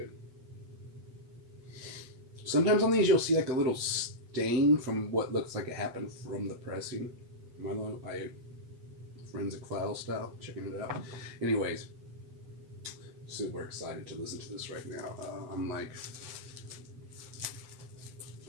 Sometimes on these you'll see like a little stain from what looks like it happened from the pressing. I forensic file style, checking it out. Anyways, super excited to listen to this right now. I'm like,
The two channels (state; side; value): late; left; 8.0 ms